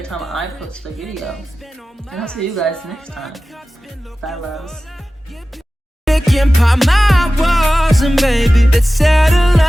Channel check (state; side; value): normal; both; correlation 0.95